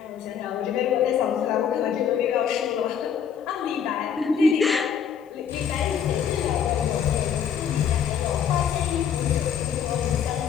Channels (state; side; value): quieter; right; 7.9 dB